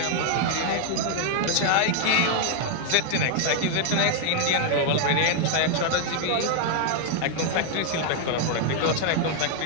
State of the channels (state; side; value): different; both; correlation 0.00